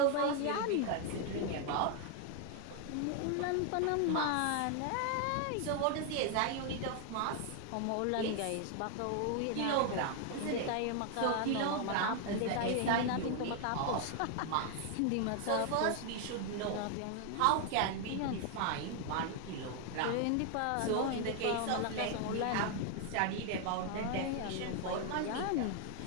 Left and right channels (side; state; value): both; different; correlation 0.00